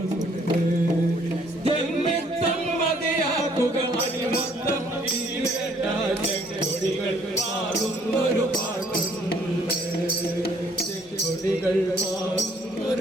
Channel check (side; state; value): both; normal; correlation 0.63